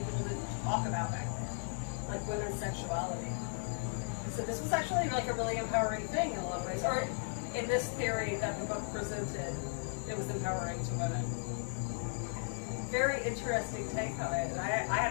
people didn't talk about back then, like women's sexuality. So this was actually like a really empowering thing in a lot of ways. Or in this theory that the book presented, it was empowering to women. Very interesting take on it, and I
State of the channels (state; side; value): silent; right; 54 dB below the other